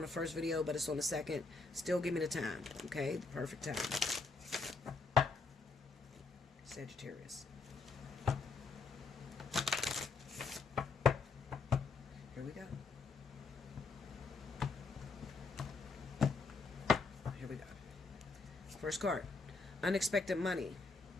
the first video, but it's on the second, still give me the time, okay? The perfect time. Sagittarius. Here we go. Here we go. First card. Unexpected money.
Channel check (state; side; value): quieter; right; 4.2 dB